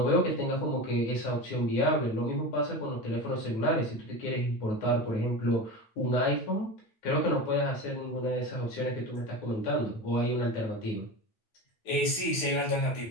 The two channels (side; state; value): right; late; 9.1 ms